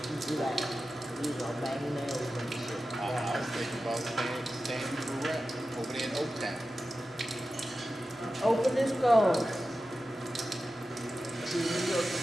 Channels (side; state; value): both; normal; correlation 0.93